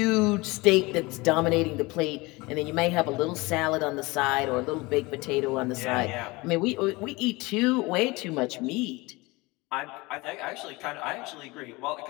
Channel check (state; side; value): quieter; right; 23.3 dB